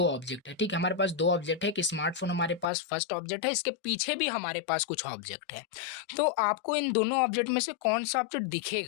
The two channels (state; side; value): drops out; right; at 2.7 s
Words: ऑब्जेक्ट है, ठीक है, हमारे पास दो ऑब्जेक्ट है, एक स्मार्टफोन हमारे पास फर्स्ट ऑब्जेक्ट है, इसके पीछे भी हमारे पास कुछ ऑब्जेक्ट है। तो आपको इन दोनों ऑब्जेक्ट में से कौन सा ऑब्जेक्ट